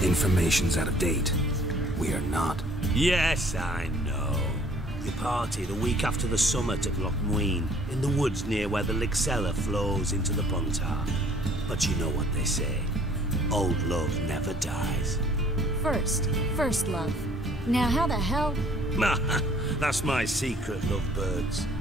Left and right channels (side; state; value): both; normal; correlation 0.57